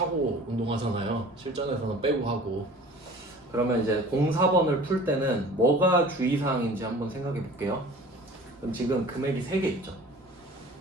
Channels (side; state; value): both; normal; correlation 0.44